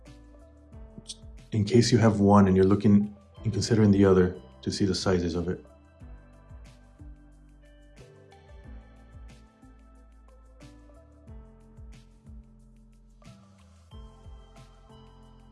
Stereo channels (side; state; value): both; identical; correlation 1.00